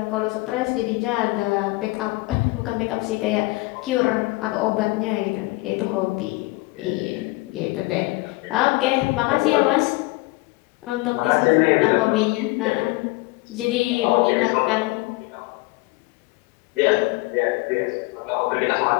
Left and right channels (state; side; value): quieter; right; 22.8 dB